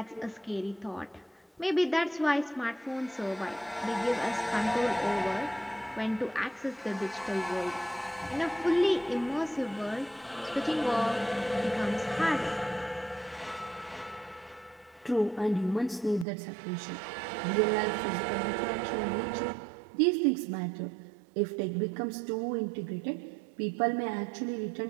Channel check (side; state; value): left; drops out; at 16.2 s